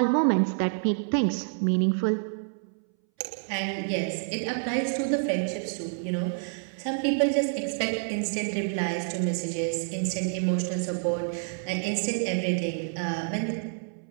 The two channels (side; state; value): left; silent; 59 dB below the other